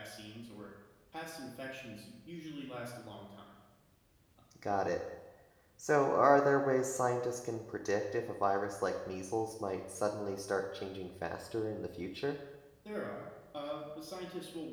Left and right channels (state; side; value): identical; both; correlation 1.00